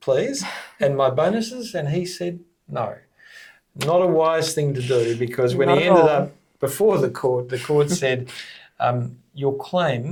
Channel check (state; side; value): identical; both; correlation 1.00